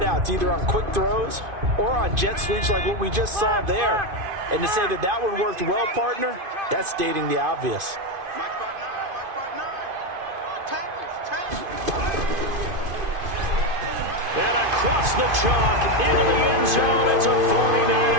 either on quick throws or on jet sweeps like what we just saw there. And to say that that one worked well, partner, that's stating the obvious. And across the chalk, into the end zone, it's a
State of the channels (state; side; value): late; left; 2.5 ms